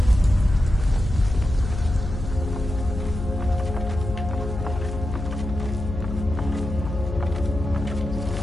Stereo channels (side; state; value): left; noise; hum, 6 dB below the sound